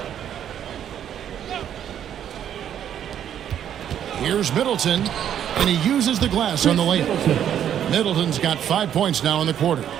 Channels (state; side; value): quieter; left; 9.8 dB